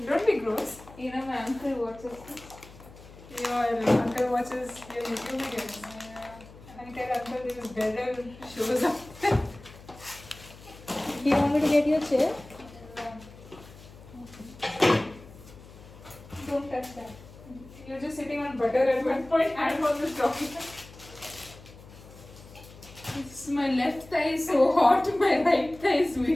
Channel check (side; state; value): left; noise; hum, 19 dB below the sound